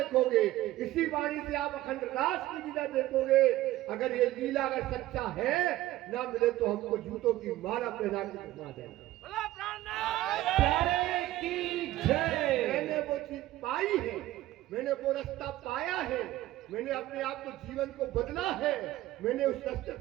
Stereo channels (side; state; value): left; quieter; 15.8 dB